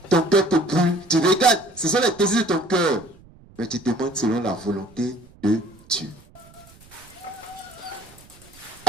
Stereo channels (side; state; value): right; noise; rumble, 25 dB below the sound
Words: ton cœur te brûle, tu regardes, ce sont les désirs de ton cœur. Mais tu demandes selon la volonté de Dieu.